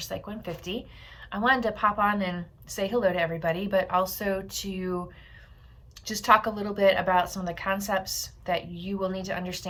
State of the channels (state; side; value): identical; both; correlation 1.00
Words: 150. I wanted to pop on and say hello to everybody, but also to just talk a little bit about some of the concepts that you will need to